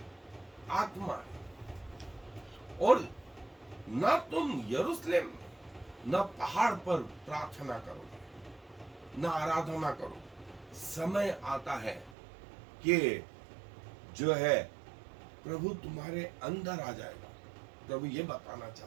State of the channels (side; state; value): left; drops out; at 12.2 s